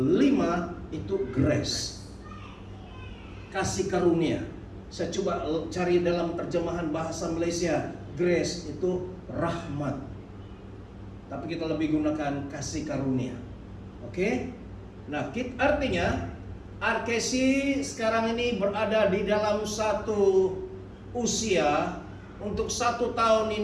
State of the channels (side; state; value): both; identical; correlation 1.00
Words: itu grace, kasih karunia. Saya coba cari dalam terjemahan bahasa Malaysia, grace itu rahmat, tapi kita lebih gunakan kasih karunia. Oke. Nah, artinya Arkesi sekarang ini berada di dalam satu usia. Untuk 1 tahun